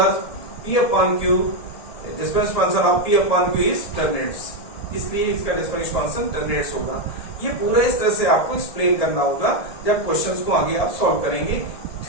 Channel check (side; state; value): right; late; 1.7 ms